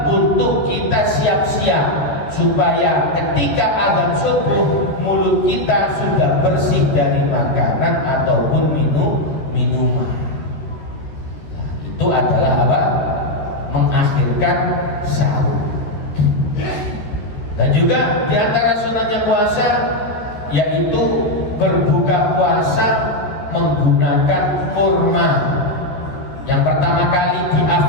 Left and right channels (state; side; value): late; right; 14 ms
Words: untuk kita siap-siap, supaya ketika azan subuh mulut kita sudah bersih dari makanan ataupun minuman. Itu adalah apa? Mengakhirkan sahur. Dan juga di antara sunatnya puasa yaitu berbuka puasa menggunakan kurma. Yang pertama kali